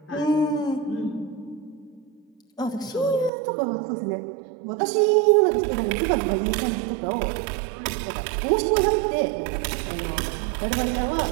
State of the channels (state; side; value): drops out; left; at 3.3 s